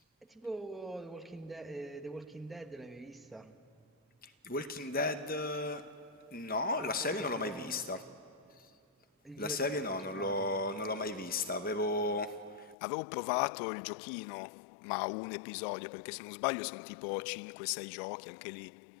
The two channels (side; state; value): right; drops out; at 12.8 s